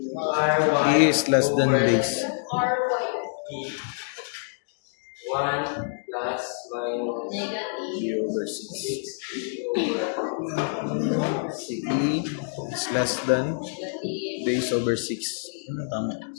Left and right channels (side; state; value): right; silent; digital silence